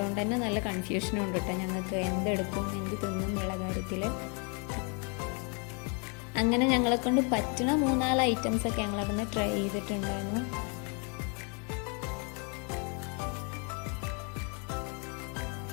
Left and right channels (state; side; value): quieter; right; 36.2 dB